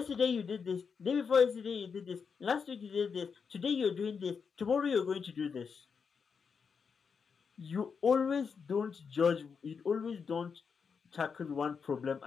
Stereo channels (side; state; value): right; quieter; 5.9 dB